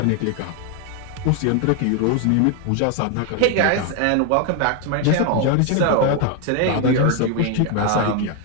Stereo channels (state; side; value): different; both; correlation 0.01